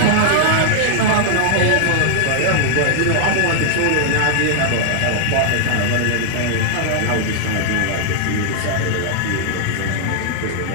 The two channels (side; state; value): both; different; correlation 0.00